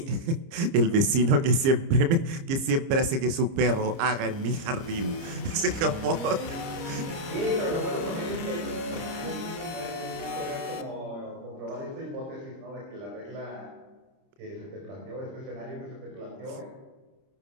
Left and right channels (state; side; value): late; left; 30 ms